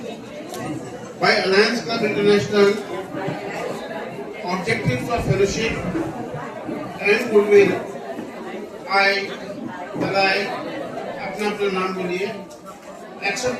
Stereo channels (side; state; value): both; identical; correlation 1.00